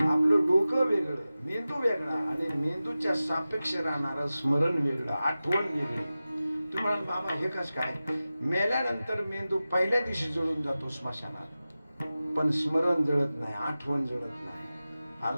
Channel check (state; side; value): inverted; both; correlation -0.95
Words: डोकं वेगळं, मेंदू वेगळा, आणि मेंदूच्या सापेक्ष राहणारं स्मरण वेगळं, आठवण वेगळी. तुम्हाला बाबा हे कसं काय? मेल्यानंतर मेंदू पहिल्या दिवशी जळून जातो स्मशानात, पण स्मरण जळत नाही, आठवण जळत नाही.